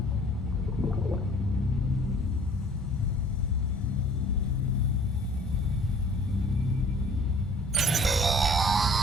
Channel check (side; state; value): both; normal; correlation 0.52